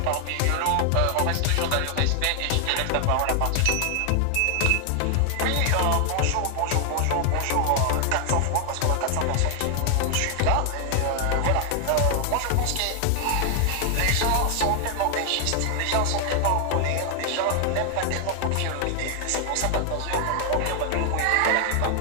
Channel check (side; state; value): both; different; correlation 0.00